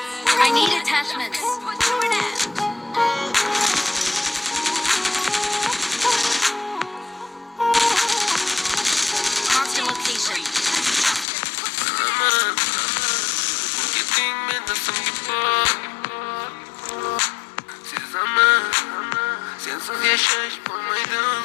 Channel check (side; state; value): right; drops out; at 11.2 s